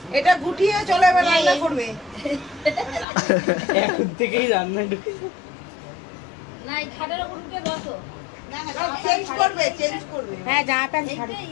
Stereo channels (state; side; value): drops out; right; at 3.1 s